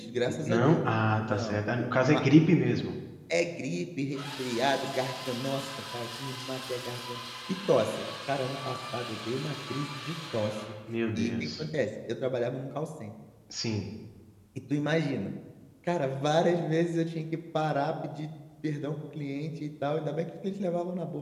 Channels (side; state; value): both; identical; correlation 1.00